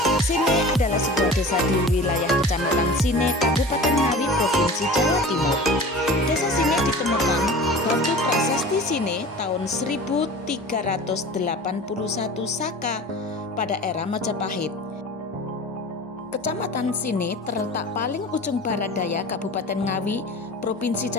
Desa di wilayah Kecamatan Sine, Kabupaten Ngawi, Provinsi Jawa Timur. Desa Sine ditemukan batu prasasti Sine tahun 1381 Saka pada era Majapahit. Kecamatan Sine terletak paling ujung barat daya Kabupaten Ngawi, Provinsi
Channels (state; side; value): normal; both; correlation 0.38